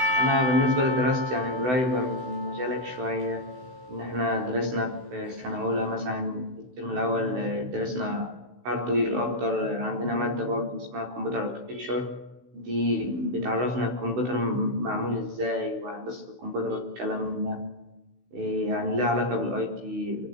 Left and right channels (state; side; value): late; left; 16 ms